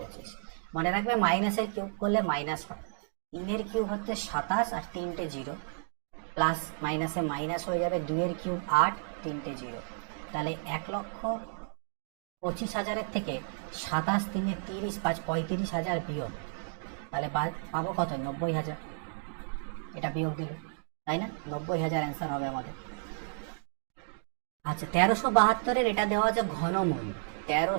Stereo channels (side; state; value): left; silent; digital silence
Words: মনে রাখবে মাইনাসের কিউব করলে মাইনাস হয়। 3-এর কিউব হচ্ছে 27 আর 3টে 0, প্লাস মাইনাসে মাইনাস হয়ে যাবে, 2-এর কিউব 8, 3টে 0, তাহলে 1,25,000-এর থেকে 27 3 30 5 35,000 বিয়োগ, তাহলে পাবো কত? 90,000। এটা বিয়োগ দিল, তাই না? 90,000 অ্যান্সার হবে আমাদের। আচ্ছা, 1372-এর এটা দেওয়া আছে ঘনমূল।